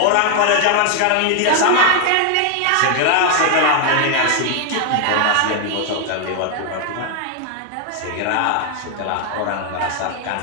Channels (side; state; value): both; different; correlation 0.00